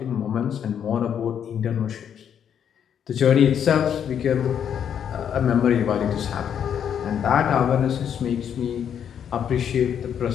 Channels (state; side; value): quieter; right; 8.6 dB